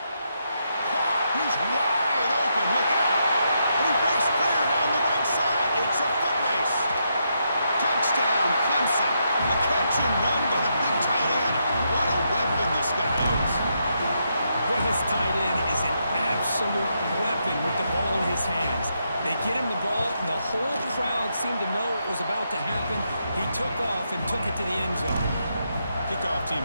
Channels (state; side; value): inverted; both; correlation -0.80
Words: He's wide open. Look out. And he breaks clear down the right side. It's a foot race. Touchdown, Clemson. A catch and run by the big tight end. What a weapon this guy is. Well, this tight end is an absolute weapon with the ball in his hands. They get him the ball, and the whole crowd seemed to know it was about to happen. He took off and took it to the end zone. Kickoff team